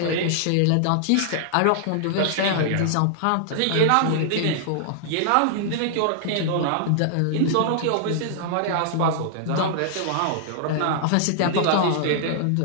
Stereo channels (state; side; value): different; both; correlation -0.01